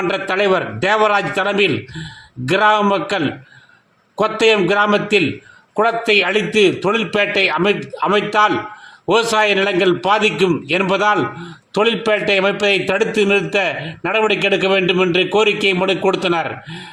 தலைவர் தேவராஜ் தலைமையில் கிராம மக்கள் கொத்தயம் கிராமத்தில் குளத்தை அழித்து தொழில்பேட்டை அமைத்தால் விவசாய நிலங்கள் பாதிக்கும் என்பதால் தொழில்பேட்டை அமைப்பதை தடுத்து நிறுத்த நடவடிக்கை எடுக்க வேண்டும் என்று கோரிக்கை மனு கொடுத்தனர்.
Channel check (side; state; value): both; identical; correlation 1.00